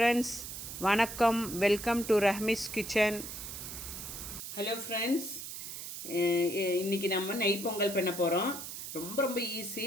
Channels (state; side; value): noise; right; hiss, 8 dB below the sound